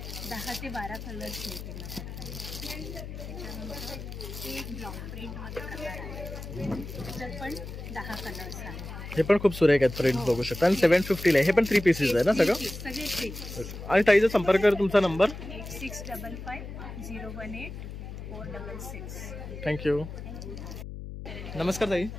10 ते 12 कलर्स मिळतील. त्याच्यानंतर हे एक ब्लॉक प्रिंटमध्ये प्रकार आहे. त्याच्यात पण 10 कलर्स आहेत. हे पण खूप सुरेख आहेत. प्रिंट बघू शकता. आणि 750 आहे. हे पण 3 पीसेस आहे ना सगळं? सगळे 3. आणि ताईचा संपर्क कर. तुमचा नंबर? 8655016466. थँक्यू. नमस्कार ताई.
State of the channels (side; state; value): left; noise; hum, 10 dB below the sound